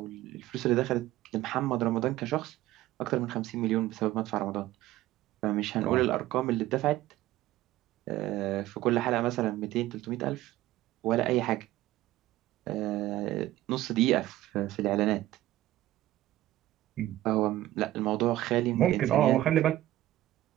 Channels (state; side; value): quieter; left; 15.3 dB